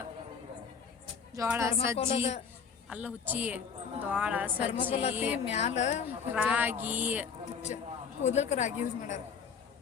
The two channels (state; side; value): quieter; right; 6.3 dB